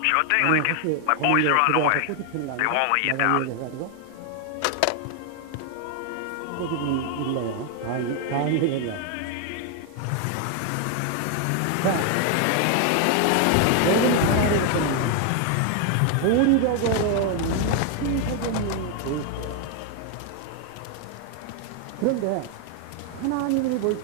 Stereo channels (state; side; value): different; both; correlation 0.00